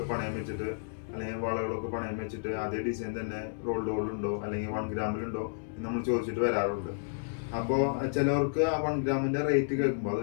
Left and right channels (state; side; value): silent; right; digital silence